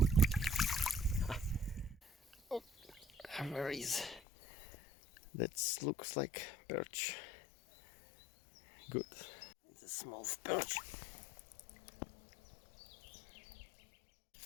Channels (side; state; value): right; drops out; at 4.2 s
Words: Oh, where is? That looks like perch. Good. It's a small perch.